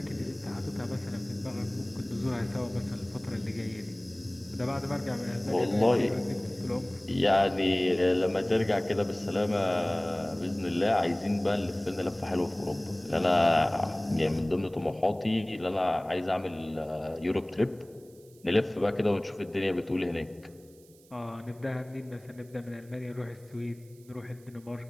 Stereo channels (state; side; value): noise; right; hiss, 28 dB below the sound